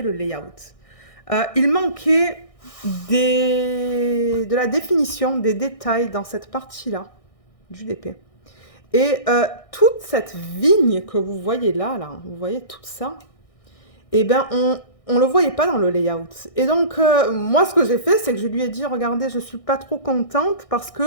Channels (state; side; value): late; right; 1.6 ms